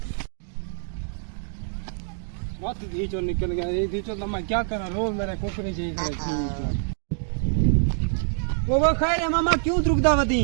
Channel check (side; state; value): left; silent; digital silence